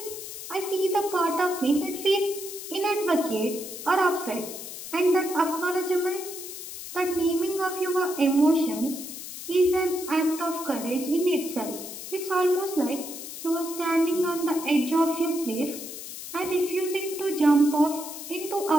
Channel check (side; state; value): left; noise; hiss, 10 dB below the sound